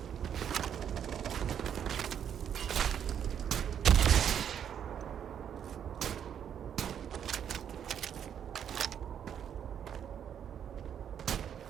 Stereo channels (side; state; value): left; quieter; 8.8 dB